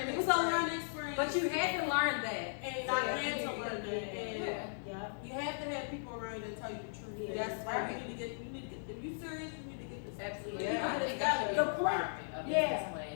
It was a learning experience. But you had to learn that. and I had to learn that. And Yeah. you have to have people around that tell you the truth. Yeah, That's right. You need to get. If you serious, you need to get this. Absolutely. I Yeah. think that should be The a point- requirement of yeah.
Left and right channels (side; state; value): right; silent; digital silence